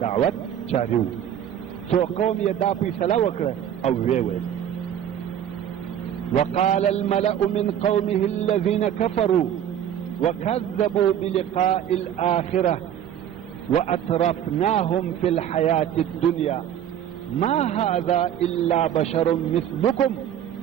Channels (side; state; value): left; quieter; 10.0 dB